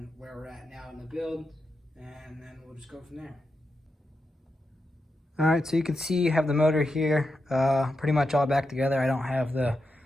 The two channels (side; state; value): both; normal; correlation 0.87